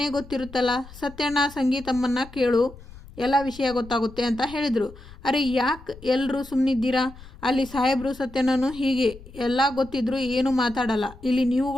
ಗೊತ್ತಿರುತ್ತಲ್ಲ. ಸತ್ಯಣ್ಣ, ಸಂಗೀತಮ್ಮನ್ನ ಕೇಳು, ಎಲ್ಲ ವಿಷಯ ಗೊತ್ತಾಗುತ್ತೆ ಅಂತ ಹೇಳಿದರು. ಅರೆ ಯಾಕೆ ಎಲ್ಲರೂ ಸುಮ್ಮನಿದ್ದೀರಾ? ಅಲ್ಲಿ ಸಾಹೇಬರು ಸತ್ಯನೂ ಹೀಗೆ ಎಲ್ಲ ಗೊತ್ತಿದ್ರು ಏನು ಮಾತಾಡಲ್ಲ. ಇಲ್ಲಿ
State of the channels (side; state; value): left; noise; rumble, 18 dB below the sound